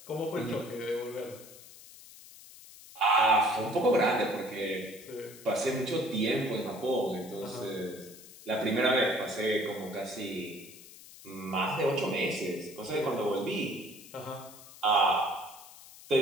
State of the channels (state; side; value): noise; left; hiss, 19 dB below the sound